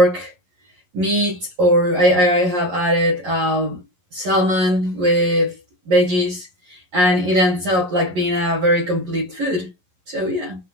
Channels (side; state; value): left; late; 11 ms